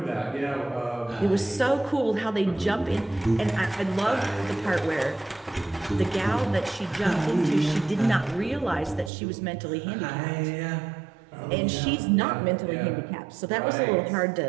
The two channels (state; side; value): drops out; left; at 9.1 s